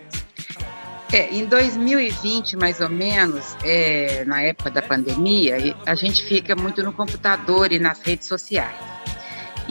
Em 2020, mais ou menos, na época da pandemia, a gente fica muito no computador e nas redes sociais.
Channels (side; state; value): both; inverted; correlation -1.00